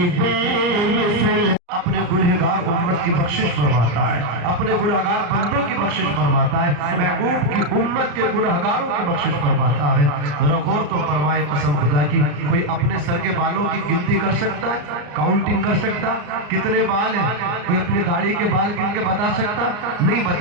बेमिसल, अपने गुनहगार उम्मत की बख्शिश फरमाता है, अपने गुनहगार बंदों की बख्शिश फरमाता है, महबूब की उम्मत के गुनहगारों की बख्शिश फरमाता है। जरा गौर तो फरमाए कसम खुदा की, कोई अपने सर के बालों की गिनती कर सकता है? काउंटिंग कर सकता? कितने बाल हैं? कोई अपनी दाढ़ी के बाल गिन के बता सकता? नहीं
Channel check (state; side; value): late; left; 34 ms